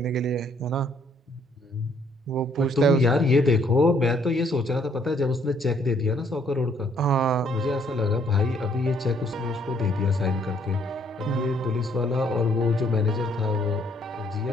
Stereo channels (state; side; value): normal; both; correlation 0.66